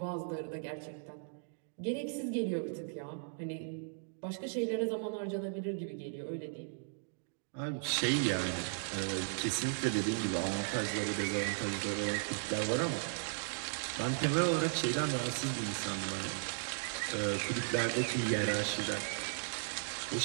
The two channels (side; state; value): left; silent; digital silence